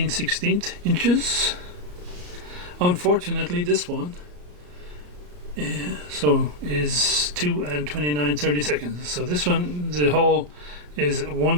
inches. Unfortunately, this one is 2 29/32. So this one, the hole is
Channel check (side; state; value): left; late; 34 ms